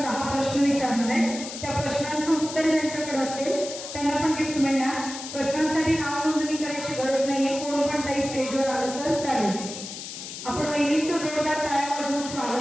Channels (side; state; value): left; noise; hiss, 9 dB below the sound